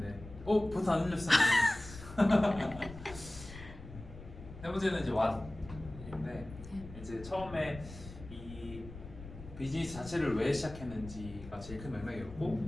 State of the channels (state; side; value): noise; left; rumble, 14 dB below the sound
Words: 버튼 안 눌렸어. 세 번째는 이제 왓인데 이제 처음에 이 비즈니스 자체를 왜 시작했는지가 제일 큰